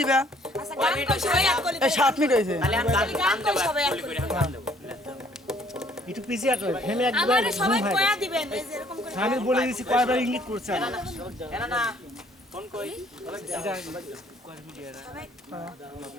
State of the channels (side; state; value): both; normal; correlation 0.61